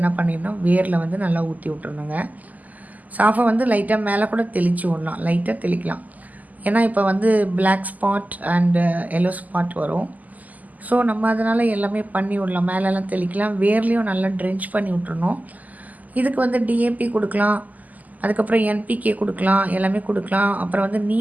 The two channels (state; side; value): late; left; 0.079 ms